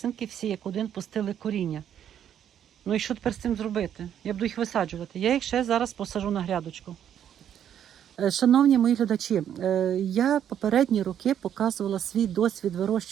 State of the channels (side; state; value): left; quieter; 9.7 dB